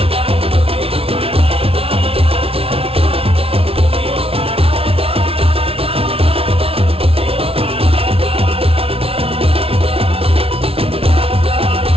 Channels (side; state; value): left; late; 0.27 ms